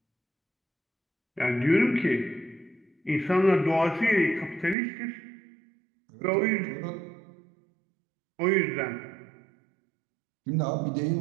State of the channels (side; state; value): left; drops out; at 4.8 s